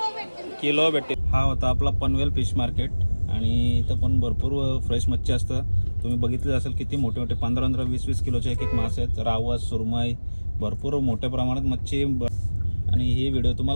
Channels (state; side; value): inverted; both; correlation -1.00